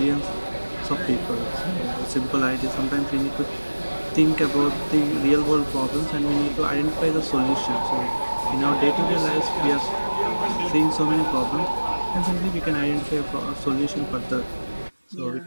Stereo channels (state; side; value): inverted; both; correlation -1.00